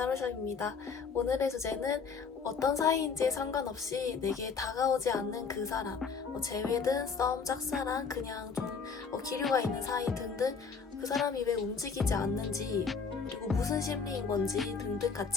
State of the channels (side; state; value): right; quieter; 5.5 dB